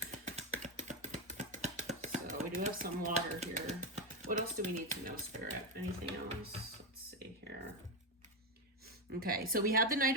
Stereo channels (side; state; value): both; normal; correlation 0.10